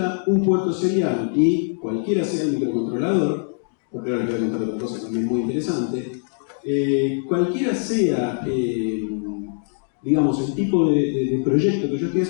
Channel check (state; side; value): silent; right; 64 dB below the other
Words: un puerto serial y cualquiera sea el microcontrolador, porque ahora les voy a contar otra cosa también muy interesante, cualquiera sea digamos, el tipo de proyecto que yo estoy